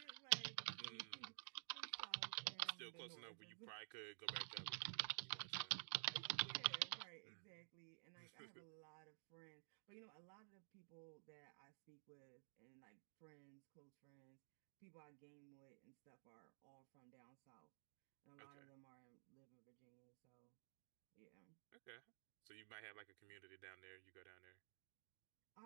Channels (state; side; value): silent; left; digital silence